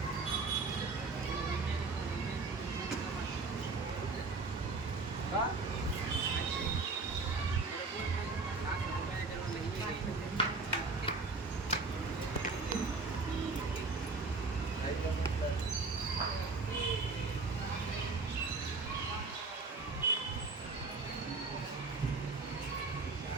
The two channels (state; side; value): quieter; left; 3.9 dB